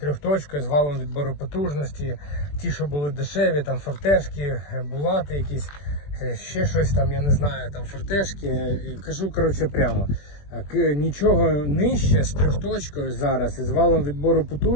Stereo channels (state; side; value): late; right; 21 ms